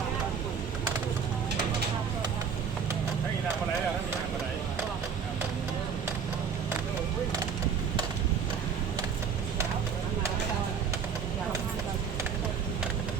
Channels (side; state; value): left; quieter; 6.6 dB